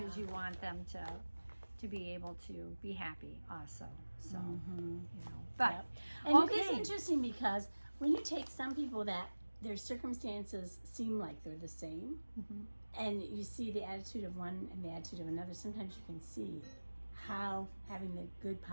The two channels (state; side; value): inverted; both; correlation -1.00